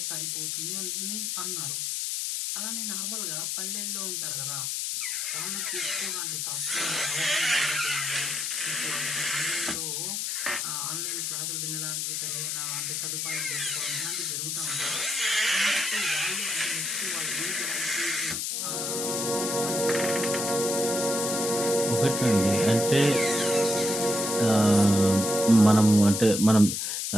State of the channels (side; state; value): left; noise; hiss, 1 dB below the sound